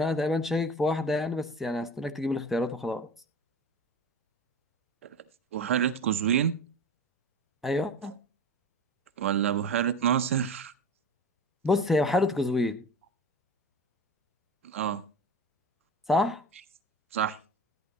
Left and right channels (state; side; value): normal; both; correlation 0.32